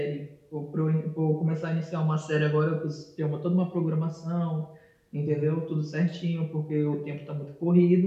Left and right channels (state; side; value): identical; both; correlation 1.00